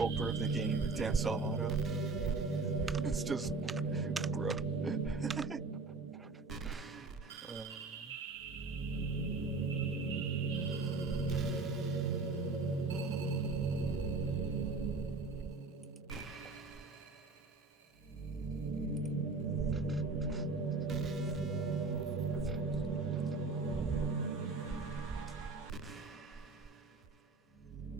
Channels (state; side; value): quieter; left; 3.8 dB